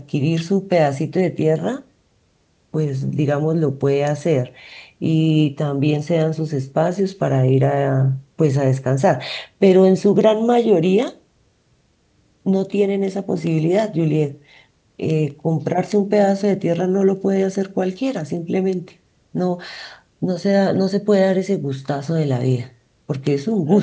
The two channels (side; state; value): both; identical; correlation 1.00